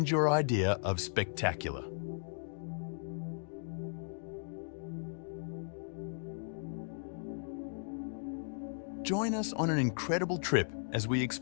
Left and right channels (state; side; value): silent; right; digital silence